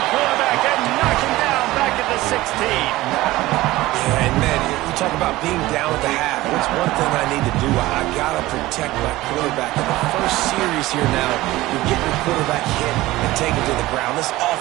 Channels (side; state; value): left; quieter; 17.9 dB